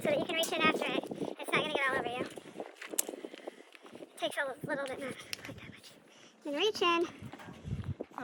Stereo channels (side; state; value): both; identical; correlation 1.00